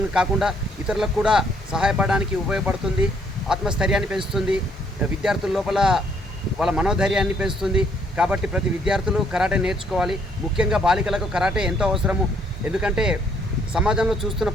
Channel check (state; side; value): normal; both; correlation 0.67